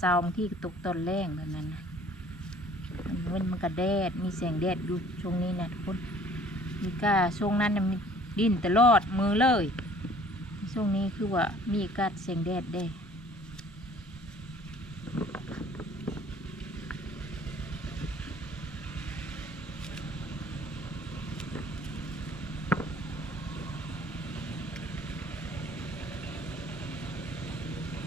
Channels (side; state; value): both; normal; correlation 0.54